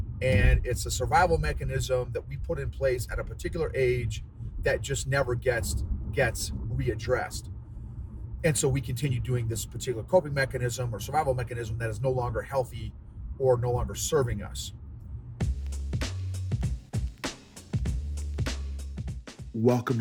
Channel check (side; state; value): both; identical; correlation 1.00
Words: and it's a survival mechanism that we put in place at a particular age that just never gets readdressed. And so we continue doing this particular coping mechanism or survival mechanism that is no longer healthy or no longer serving us. Welcome